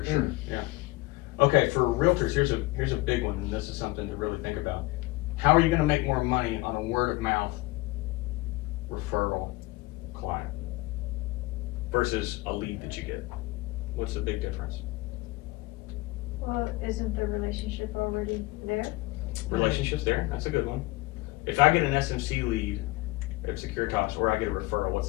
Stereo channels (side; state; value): right; quieter; 21.0 dB